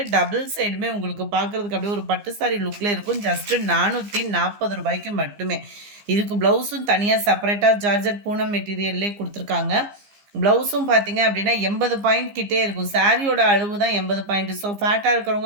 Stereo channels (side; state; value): left; late; 15 ms